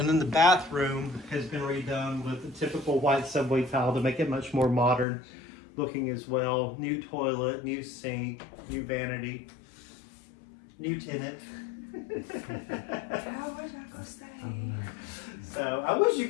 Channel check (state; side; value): drops out; right; at 5.1 s